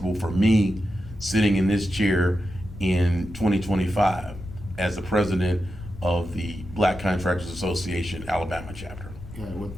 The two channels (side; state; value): left; noise; rumble, 14 dB below the sound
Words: for me sitting in this chair in 2025 as the president of the Black Contractors Association Alabama chapter. Yeah,